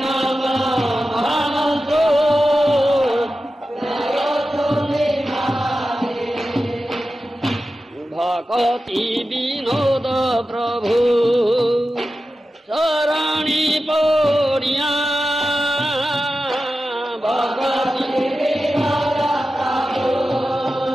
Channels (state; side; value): normal; both; correlation 0.93